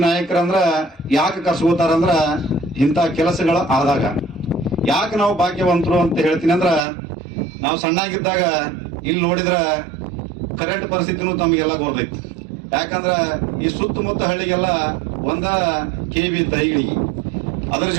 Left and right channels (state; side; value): drops out; left; at 6.8 s